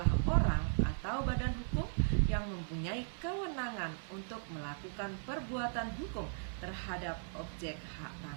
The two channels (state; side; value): silent; left; 53 dB below the other